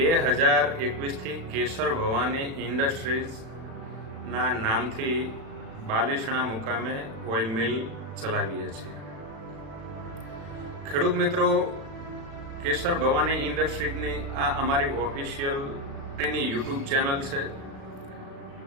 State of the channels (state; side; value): late; left; 36 ms